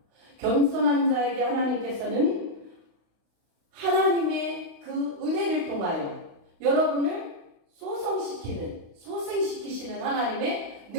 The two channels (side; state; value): left; late; 35 ms